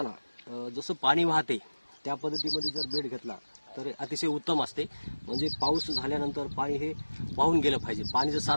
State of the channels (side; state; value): both; inverted; correlation -1.00